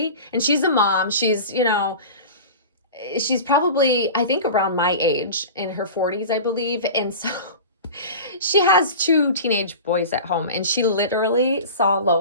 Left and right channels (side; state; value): both; inverted; correlation -0.33